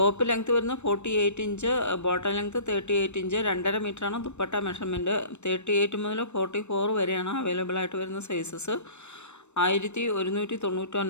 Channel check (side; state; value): right; late; 0.82 ms